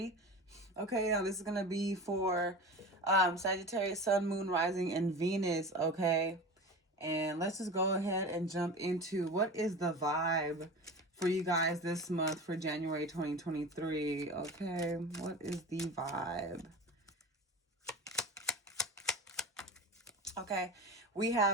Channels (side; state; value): both; normal; correlation 0.32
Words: Okay, now this is going to be for Sagittarius, Sun, Moon, Rising, and Venus, okay? And let's just go ahead and jump into what is the vibe for you guys this month for January 2023, okay? What is the vibe? Okay, we